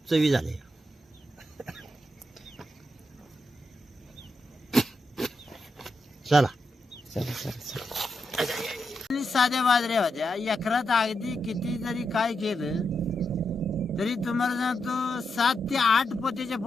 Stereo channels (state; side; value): normal; both; correlation 0.85